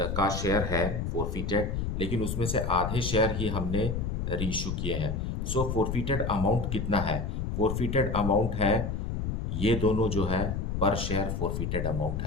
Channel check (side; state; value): left; noise; rumble, 2 dB below the sound